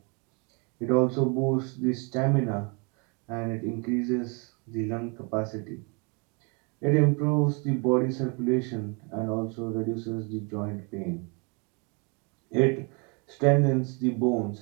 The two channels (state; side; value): quieter; left; 33.1 dB